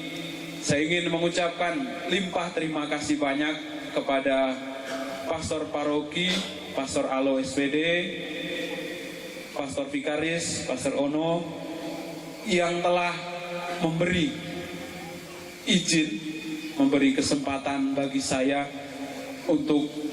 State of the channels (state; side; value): identical; both; correlation 1.00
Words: saya ingin mengucapkan limpah terima kasih banyak kepada Pastor Paroki, Pastor Alo SPD, Pastor Vikaris, Pastor Ono, yang telah memberi izin, memberi kesempatan bagi saya untuk